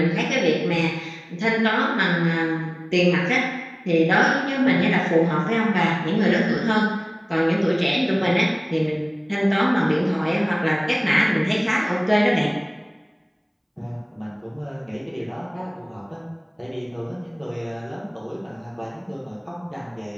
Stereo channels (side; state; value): both; identical; correlation 1.00